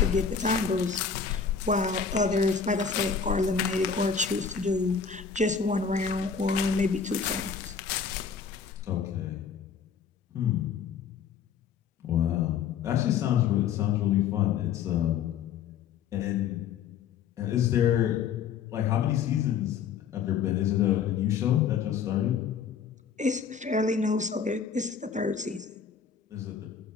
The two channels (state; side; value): quieter; right; 6.6 dB